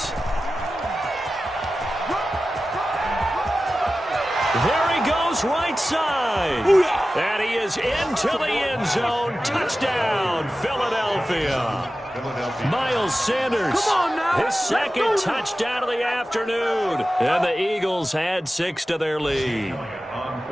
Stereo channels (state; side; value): normal; both; correlation 0.94